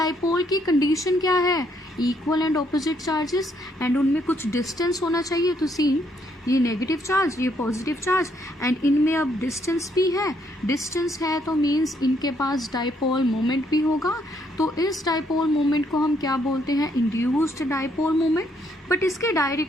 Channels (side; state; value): both; normal; correlation 0.71